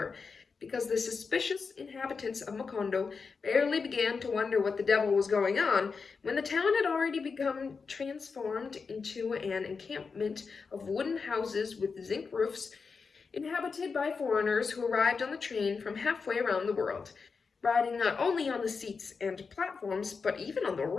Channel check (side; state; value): right; quieter; 5.1 dB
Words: because the suspicious inhabitants of Macondo barely began to wonder what the devil was going on when the town had already become transformed into an encampment of wooden houses with zinc roofs, inhabited by foreigners who arrived on the train from halfway around the world, riding not only on the seats and platforms, but even on the